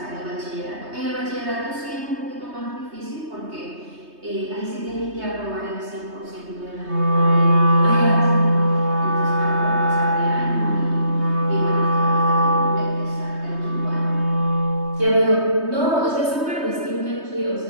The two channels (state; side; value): late; left; 3.2 ms